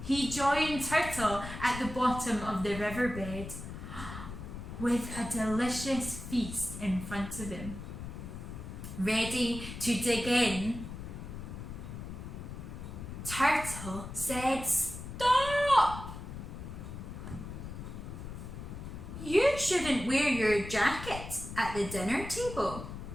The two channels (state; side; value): noise; left; rumble, 9 dB below the sound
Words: He joined Turtle at the bottom of the riverbed with a delicious feast in front of him. Ready to dig in, Turtle said, "Stop! You shouldn't wear your jacket at the dinner table."